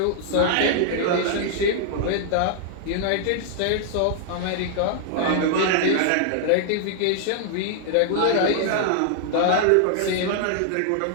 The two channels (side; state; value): both; different; correlation -0.01